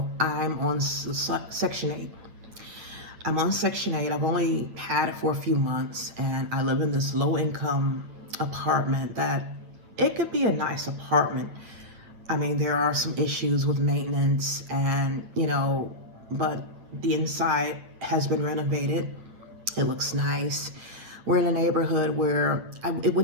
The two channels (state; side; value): late; left; 8.8 ms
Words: I'm on Section 8. I'm on Section 8. I've only had it for a few months, and I live in this low-income apartment that it could be a nice apartment. I mean, there are some issues with maintenance and, but the inside has been renovated. It looks nice. We're in a neighborhood where I